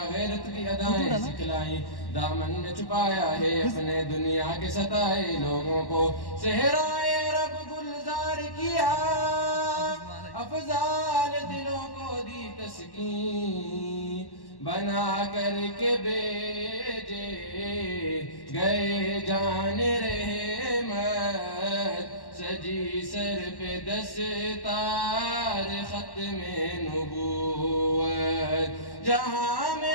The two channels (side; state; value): right; late; 1.1 ms